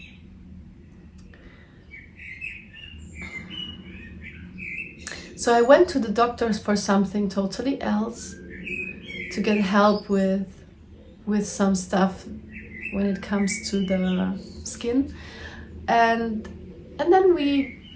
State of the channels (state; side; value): identical; both; correlation 1.00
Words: So I went to the doctors for something totally else, to get help with some stuff when it comes to the skin, and then we